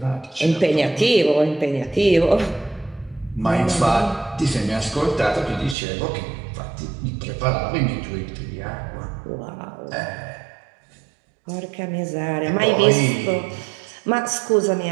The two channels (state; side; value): drops out; left; at 5.8 s